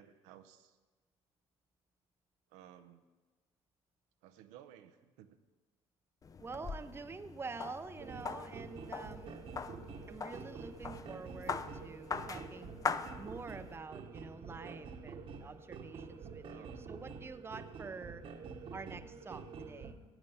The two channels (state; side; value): normal; both; correlation 0.47